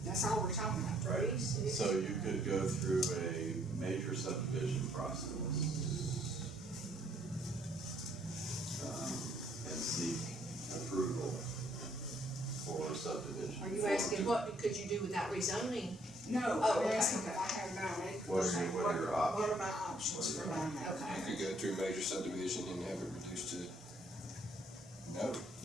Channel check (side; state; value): both; normal; correlation 0.66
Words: that's all we're talking about. Right. So you could go through a major subdivision process and seek approval for subdivision. Are you asking what could you do without rezoning? No, Oh, I'm okay, asking if okay. I have 9 acres. What are your options? What are my options for 9 acres? Okay. You could go through major subdivision and have it reduced to, no,